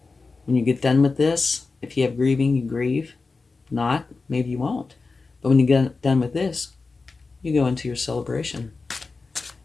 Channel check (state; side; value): quieter; right; 4.1 dB